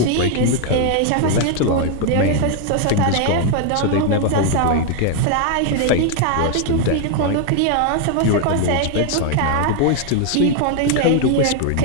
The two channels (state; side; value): different; both; correlation 0.00